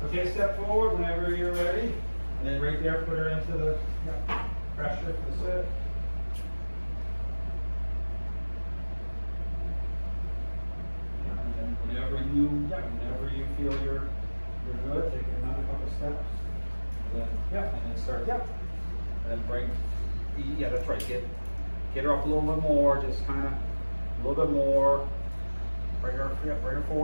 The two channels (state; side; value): inverted; both; correlation -1.00